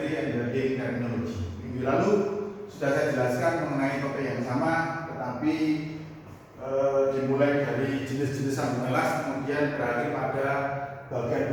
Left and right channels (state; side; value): identical; both; correlation 1.00